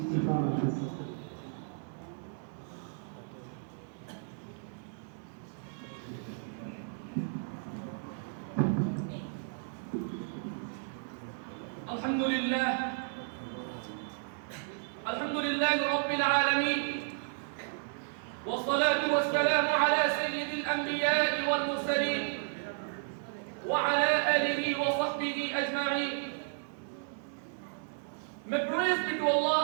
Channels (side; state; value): left; silent; 56 dB below the other